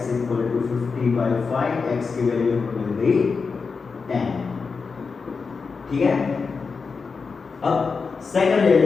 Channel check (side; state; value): right; quieter; 4.9 dB